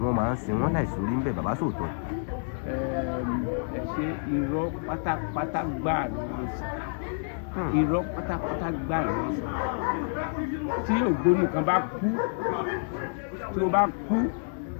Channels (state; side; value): silent; right; 59 dB below the other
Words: wọ́n máa ń sin wọ́n láìsí orí ń bẹ̀ bàbá sòótọ́. Ẹ ṣe irọ́ pátápátá gbáà ni wọ́n sọ irọ́ pátápátá gbáà ni wọ́n sọ tí ògbóni kan bá kú tí ó bá kú